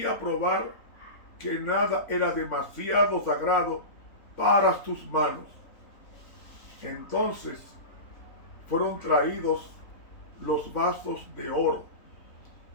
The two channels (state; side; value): late; right; 3.5 ms